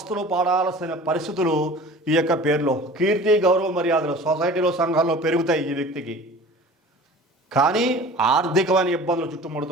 పడాల్సిన పరిస్థితులు ఈ యొక్క పేరులో. కీర్తి, గౌరవ మర్యాదలు సొసైటీలో, సంఘాల్లో పెరుగుతాయి ఈ వ్యక్తికి. కానీ ఆర్థికమైన ఇబ్బందులు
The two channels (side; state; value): both; normal; correlation 0.42